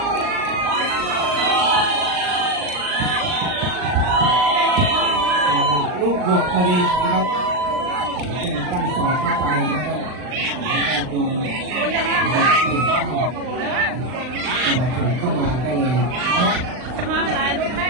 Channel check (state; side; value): late; left; 39 ms